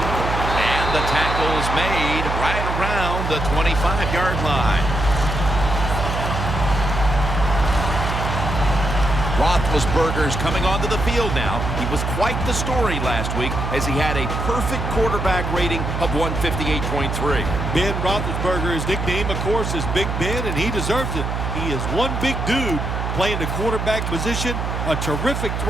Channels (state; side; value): noise; right; hum, 3 dB below the sound